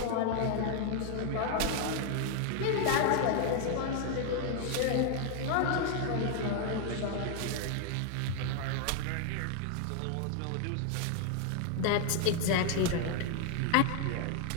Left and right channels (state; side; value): different; both; correlation 0.00